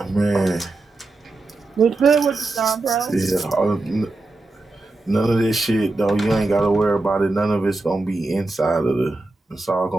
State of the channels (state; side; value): quieter; left; 3.1 dB